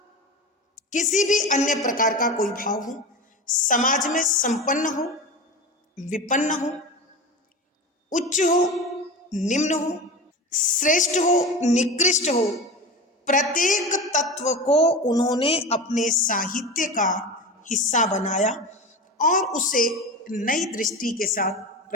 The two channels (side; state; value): both; normal; correlation 0.27